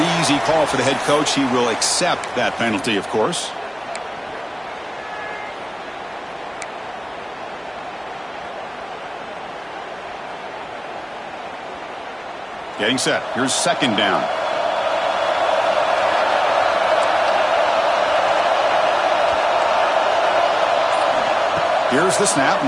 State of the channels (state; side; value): identical; both; correlation 1.00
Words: easy call for the head coach. He will accept that penalty, of course. Getting set. Here's second down. Here's the snap.